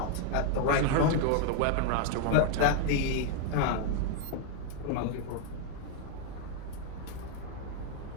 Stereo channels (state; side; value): different; both; correlation 0.00